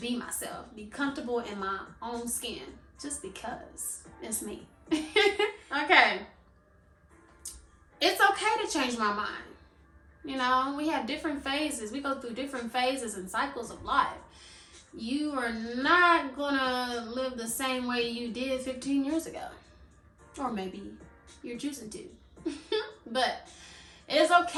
myself. Be comfortable in my own skin. Just because it's me. Okay. It's okay to change my mind. You know, we have different phases. We go through different phases and cycles of life. You are not gonna live the same way you did 15 years ago. Or maybe you're choosing to. But it's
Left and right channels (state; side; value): identical; both; correlation 1.00